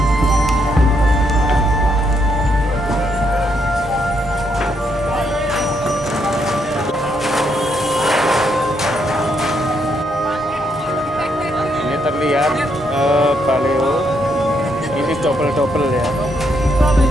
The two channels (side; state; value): both; normal; correlation 0.76